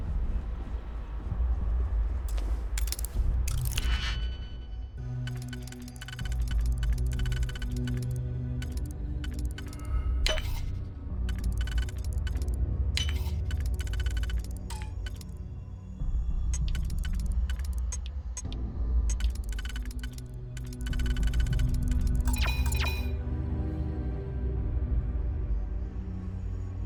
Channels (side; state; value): both; identical; correlation 1.00